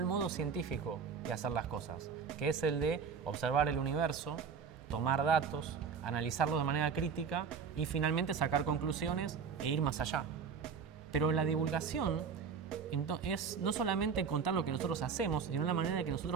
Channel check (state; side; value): quieter; left; 6.1 dB